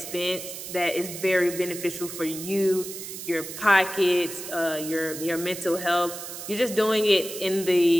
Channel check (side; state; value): right; noise; hiss, 9 dB below the sound